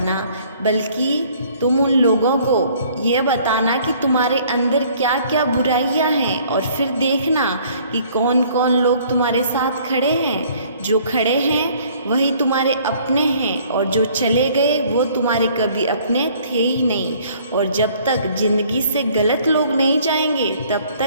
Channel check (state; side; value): inverted; both; correlation -0.58